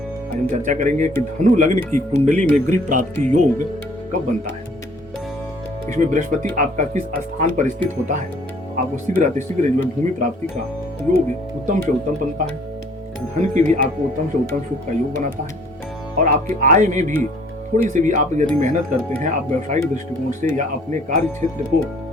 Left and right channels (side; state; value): both; normal; correlation 0.57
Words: आज हम चर्चा करेंगे कि धनु लग्न की कुंडली में गृह प्राप्ति योग कब बनता है। इसमें बृहस्पति आपका किस स्थान पर स्थित होता है, आपको शीघ्र अतिशीघ्र जो है भूमि प्राप्ति का योग उत्तम से उत्तम बनता है। धन की भी आपको उत्तम से उत्तम सुख का योग बनाता है और आपकी आय में भी थोड़ी सी भी आप यदि मेहनत करते हैं, आप व्यवसायिक दृष्टिकोण से या अपने कार्य क्षेत्र को